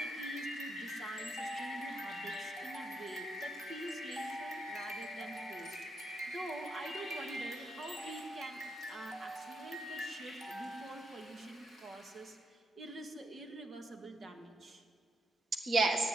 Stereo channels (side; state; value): both; normal; correlation 0.79